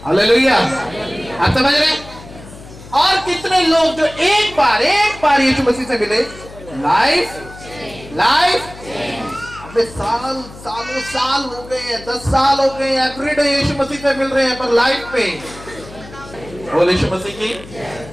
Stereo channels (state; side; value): noise; left; hum, 17 dB below the sound